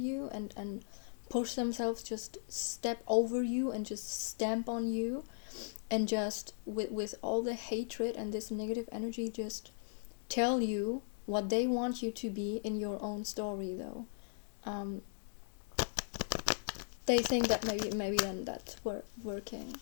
and push themselves, just step over you and just stamp on you, and just with all the hatred and this negative energy, just tell you what they want you to be in your own story, though, they think that maybe then that's working.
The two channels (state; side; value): silent; right; digital silence